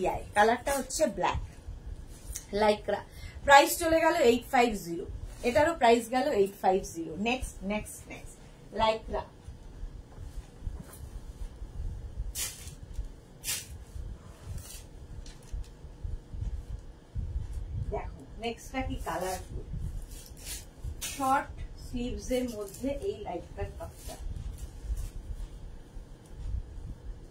কালারটা হচ্ছে ব্ল্যাক লাইক্রা। প্রাইস চলে গেল 850। এটারও প্রাইস গেল 850। Next next next Lycra. দেখো নেক্সটটা কি কালারফুল, শর্ট স্লিভস এর মধ্যে এই লাইক্রার টপটা।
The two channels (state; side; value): identical; both; correlation 1.00